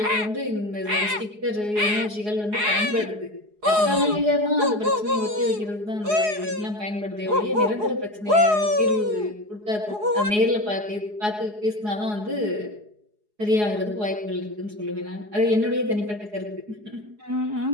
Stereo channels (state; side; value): late; left; 4.8 ms